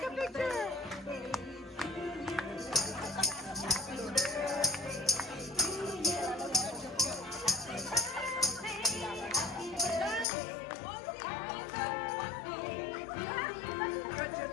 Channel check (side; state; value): right; drops out; at 10.2 s